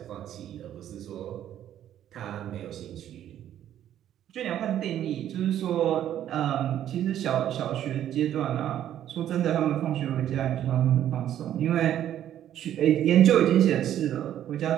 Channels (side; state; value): left; quieter; 11.2 dB